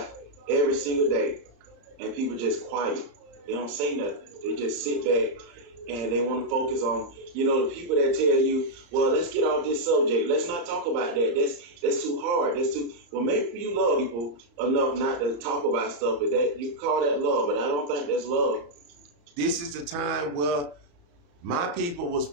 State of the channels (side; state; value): left; late; 34 ms